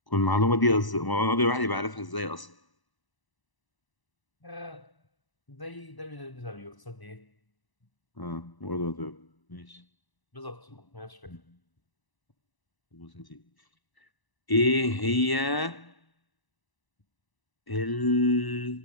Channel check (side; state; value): right; late; 1.0 ms